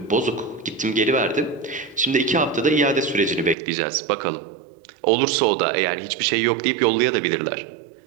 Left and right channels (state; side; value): drops out; left; at 3.6 s